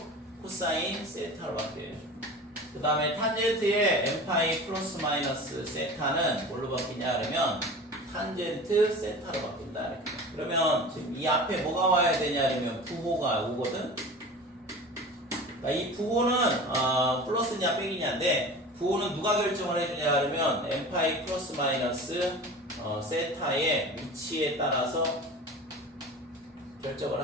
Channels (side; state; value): both; normal; correlation 0.36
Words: 코사인 세타로 바뀌어요. 그 다음에 탄젠트의 n파이 플러스 마이너스 세타는 뭘로 바뀌냐 그러면 탄젠트 세타로 바뀐다 이렇게. 그러면 지금 이 앞에 뭐가 와야 되냐 그러면 부호가 오거든. 그러니까 이 부호는 플러스냐 빼기냐인데, 부호는 누가 결정을 해주냐 그러면 n파이 플러스 마이너스 세타의 위치에 따라서 결정을